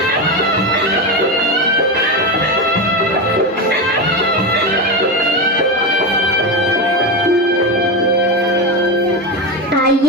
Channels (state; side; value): normal; both; correlation 0.16